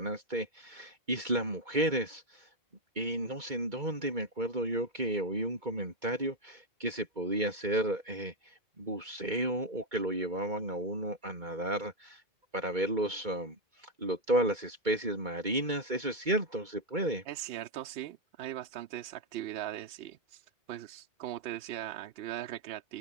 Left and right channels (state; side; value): late; left; 2.2 ms